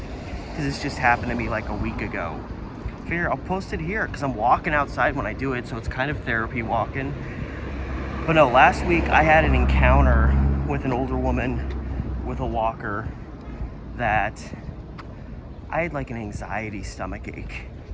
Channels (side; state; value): both; identical; correlation 1.00